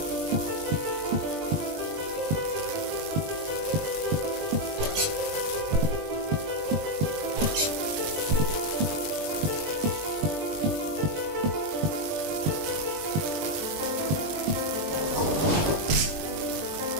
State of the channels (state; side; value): late; left; 20 ms